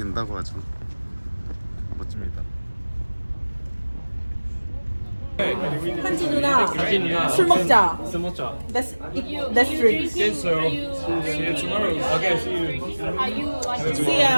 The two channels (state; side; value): inverted; both; correlation -1.00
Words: 하죠. 멋집니다. 한지 누나 술 먹자. 술 먹자. Let's drink. See you tomorrow. Okay, see you. Are you like See